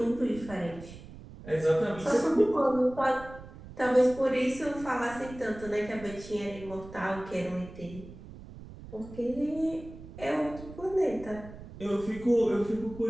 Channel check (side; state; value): right; noise; rumble, 16 dB below the sound